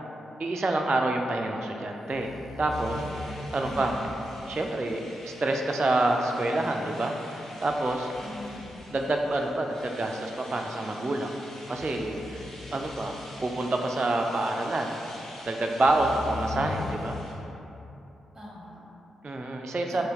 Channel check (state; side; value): normal; both; correlation 0.87